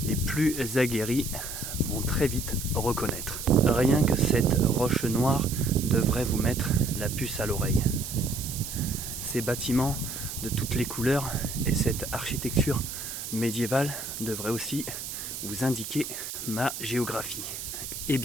Les plus aguerris vont très vite reconnaître. Rien que cette roche noire devrait vous mettre la puce à l'oreille. Ces bâtiments de toutes les couleurs et cette architecture médiévale devraient aussi vous indiquer ma géographie. Et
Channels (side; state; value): right; noise; hiss, 7 dB below the sound